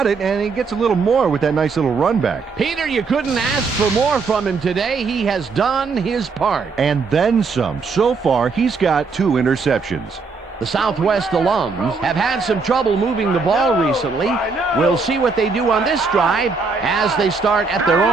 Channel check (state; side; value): quieter; left; 4.6 dB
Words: it, and he gets a little more with that nice little run back. Peter, you couldn't ask for more from him today. He has done his part. And then some. So far, he's got 2 interceptions. The Southwest alums have had some trouble moving the ball recently. We'll see what they do on this drive as they start at their